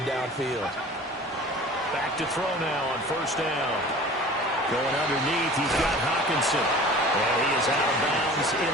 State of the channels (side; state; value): both; normal; correlation 0.42